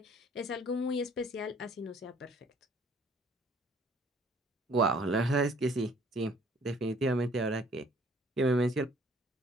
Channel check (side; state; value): both; normal; correlation 0.58